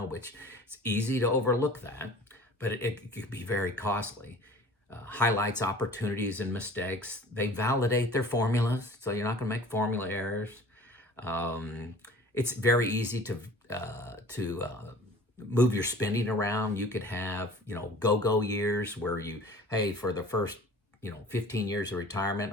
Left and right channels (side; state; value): both; normal; correlation 0.45